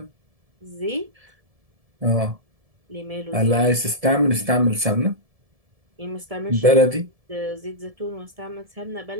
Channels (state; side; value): late; left; 1.7 ms